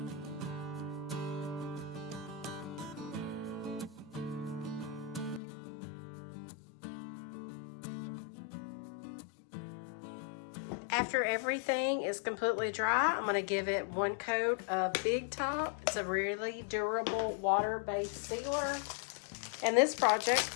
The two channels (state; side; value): drops out; right; at 5.4 s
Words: After everything is completely dry, I'm going to give it one coat of Big Top. It's a really durable water-based sealer, and this project